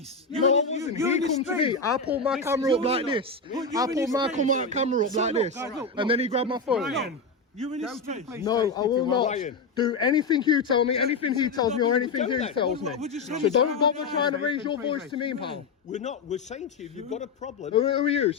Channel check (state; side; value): quieter; right; 4.1 dB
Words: No, I wasn't. You're He in his come to space. me. I pulled my camera up like this. I pulled my camera up So like look, this. guys, look, And then he grabbed my phone. Ryan, you're in his space. No, I will not Ryan. do anything you tell me, anything he tells me, or anything he tells me. Would you say So this don't out bother loud? trying to raise your voice to me, pal. We're not. We're saying to you, you've got a problem. Who are you?